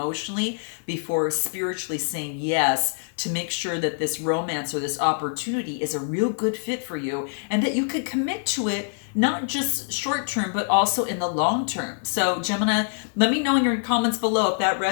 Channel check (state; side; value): silent; right; 57 dB below the other